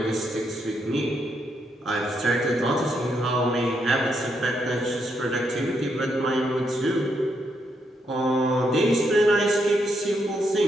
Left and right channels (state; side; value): normal; both; correlation 0.78